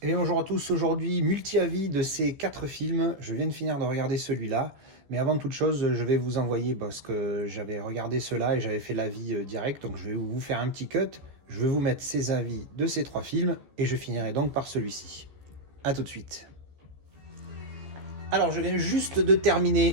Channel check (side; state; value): left; late; 14 ms